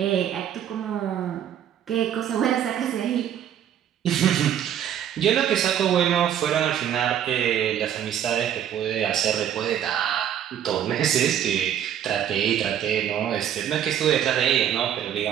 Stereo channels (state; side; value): quieter; left; 9.9 dB